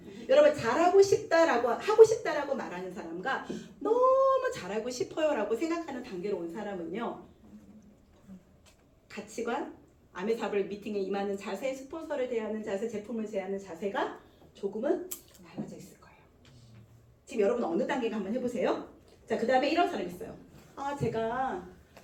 여러분 잘하고 싶다라고 하고 싶다라고 말하는 사람과 너무 잘하고 싶어요라고 생각하는 단계로 온 사람은요. 가치관, 아메사블 미팅에 임하는 자세, 스폰서를 대하는 자세, 제품을 대하는 자세가 조금은 달라져 있을 거예요. 지금 여러분 어느 단계가 한번 해보세요. 자, 그 다음에 이런 사람 있어요.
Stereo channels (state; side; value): identical; both; correlation 1.00